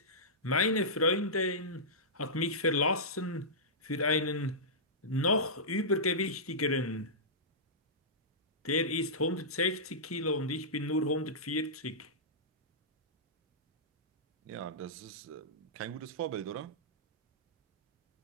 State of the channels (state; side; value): normal; both; correlation -0.16